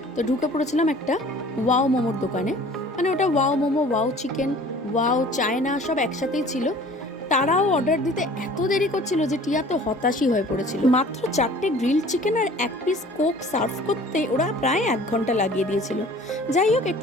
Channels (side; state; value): both; normal; correlation 0.48